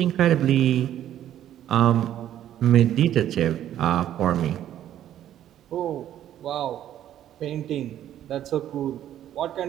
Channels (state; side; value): quieter; left; 11.5 dB